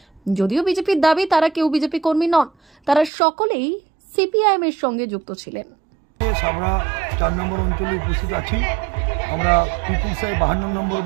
যদিও বিজেপির দাবি তারা কেউ বিজেপি কর্মী নন, তারা সকলেই সিপিআইএম এর সঙ্গে যুক্ত ছিলেন। সাবড়া 4 নম্বর অঞ্চলে উপস্থিত আছি। আমরা পিপুল সাই 52 নম্বর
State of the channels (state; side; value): drops out; left; at 3.1 s